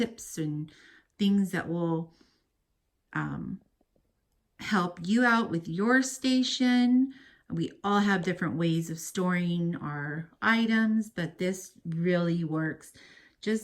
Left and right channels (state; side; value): identical; both; correlation 1.00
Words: and things that will help you out with your station. We all have different ways of storing our items, but this really works